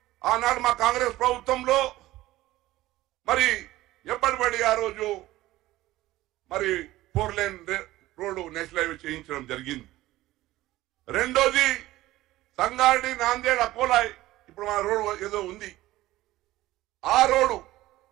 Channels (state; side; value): quieter; left; 16.6 dB